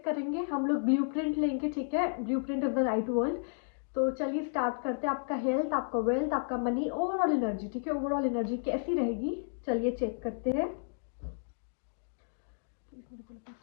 करेंगे, हम लोग ब्लूप्रिंट लेंगे, ठीक है, blueprint is the right word. तो चलिए स्टार्ट करते हैं। आपका हेल्थ, आपका वेल्थ, आपका मनी, ओवरऑल एनर्जी, ठीक है, ओवरऑल एनर्जी कैसी रहेगी, चलिए चेक करते हैं।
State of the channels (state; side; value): silent; right; digital silence